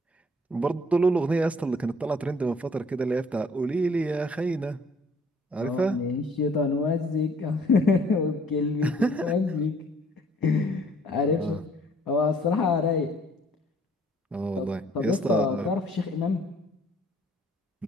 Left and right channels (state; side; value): normal; both; correlation 0.59